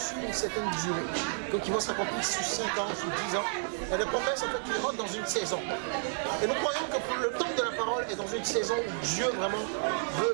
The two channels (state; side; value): silent; left; 57 dB below the other